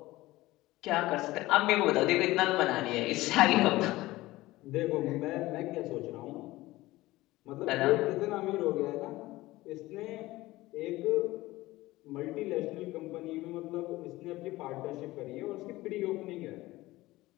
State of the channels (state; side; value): quieter; right; 18.4 dB